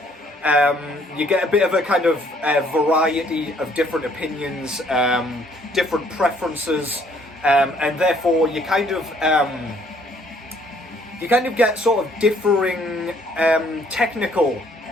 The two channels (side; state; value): both; normal; correlation 0.63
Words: You get a bit of a kind of variety of different opinions, different preferences, and therefore you kind of get sort of differing technical